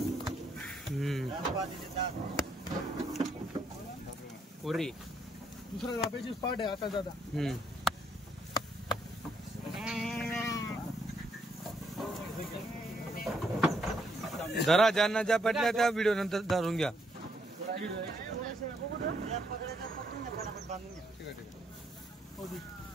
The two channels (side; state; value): both; normal; correlation 0.73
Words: पुरी दुसऱ्या जापेची स्पॉट आहे आता दादा जरा ज्यांना ज्या पटल्या त्या व्हिडिओ नंतर धरून घ्या